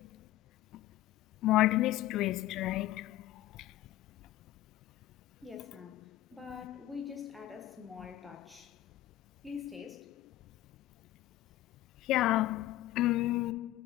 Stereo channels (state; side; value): quieter; right; 15.0 dB